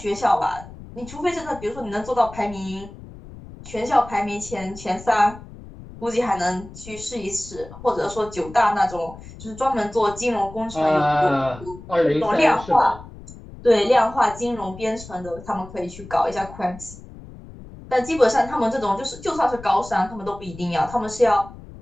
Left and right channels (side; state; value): left; noise; rumble, 16 dB below the sound